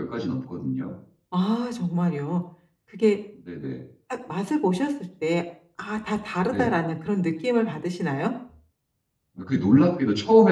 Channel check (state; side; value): identical; both; correlation 1.00